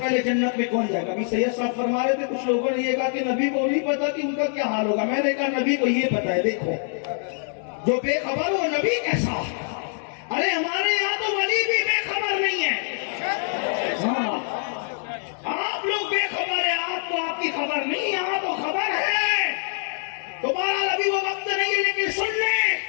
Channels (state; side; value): silent; right; 57 dB below the other